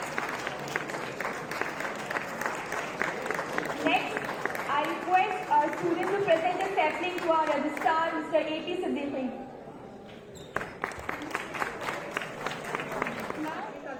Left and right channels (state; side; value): identical; both; correlation 1.00